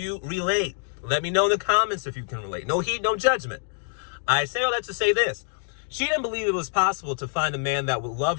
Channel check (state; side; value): silent; right; 61 dB below the other